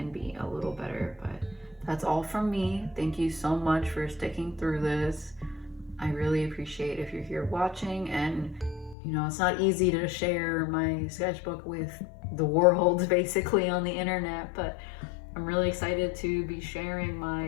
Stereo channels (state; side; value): drops out; right; at 9.0 s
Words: be a little better. But that's all from me. Thank you so much for sticking through this. I really appreciate if you're here watching, and you know, it's not easy to share my sketchbook with the world basically on the internet, but I'm really excited to be sharing